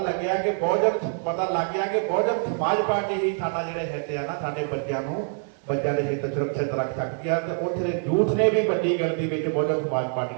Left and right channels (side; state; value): left; silent; 57 dB below the other